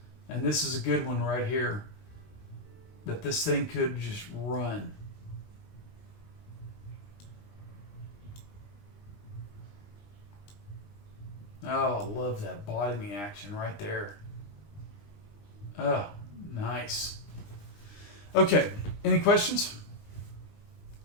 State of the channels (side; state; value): right; late; 20 ms